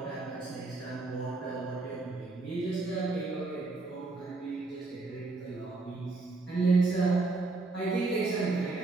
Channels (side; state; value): left; quieter; 3.5 dB